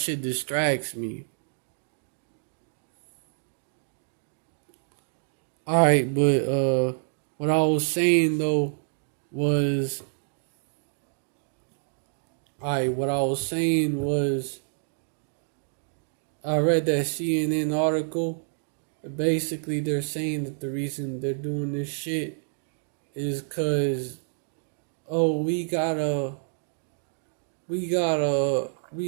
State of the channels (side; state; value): left; silent; digital silence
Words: distracts me. Alright, but what I was saying though was, what I was saying was, I read that CNN article. Basically, they're saying that the reason they're doing this shit is because, oh, we gotta